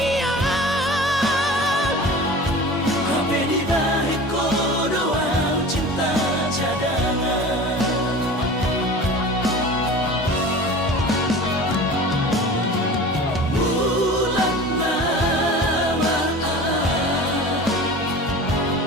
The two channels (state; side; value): normal; both; correlation 0.37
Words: Habe di balik doa cinta cadangan. Bulan maaf,